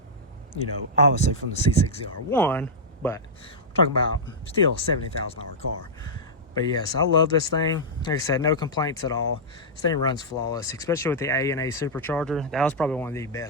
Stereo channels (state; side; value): normal; both; correlation -0.09